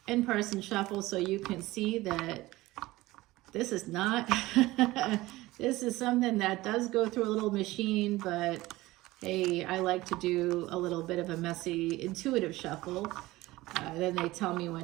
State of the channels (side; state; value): left; quieter; 18.7 dB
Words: in-person shuffle so you can see that this is not, this is something that does go through a little machine, but hey, I like to do a little bit of a messy, intuitive shuffle. Then they tell me